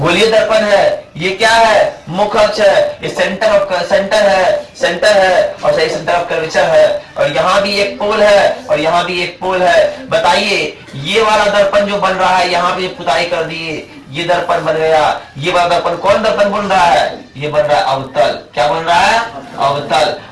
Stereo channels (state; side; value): identical; both; correlation 1.00